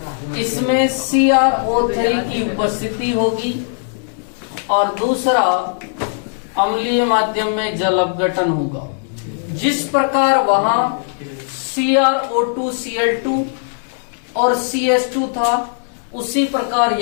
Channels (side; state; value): right; silent; digital silence